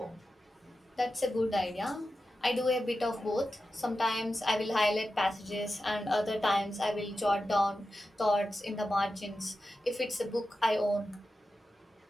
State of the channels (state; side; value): normal; both; correlation 0.92